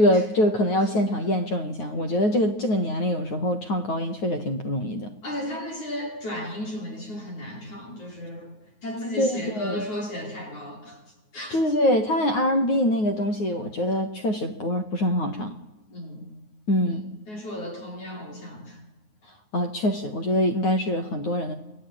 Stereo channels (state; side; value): late; right; 9.5 ms